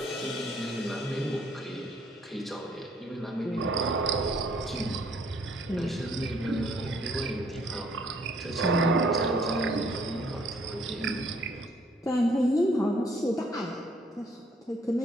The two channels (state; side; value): normal; both; correlation 0.63